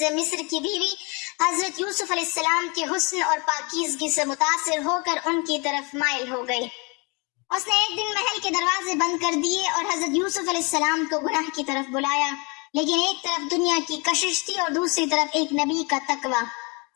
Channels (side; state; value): right; quieter; 30.5 dB